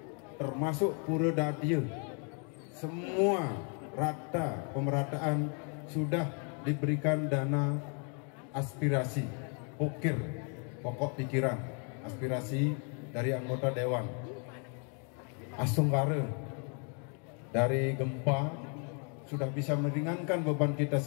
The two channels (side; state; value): right; quieter; 39.3 dB